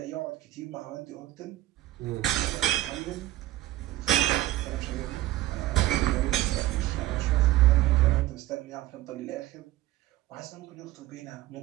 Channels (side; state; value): left; quieter; 15.9 dB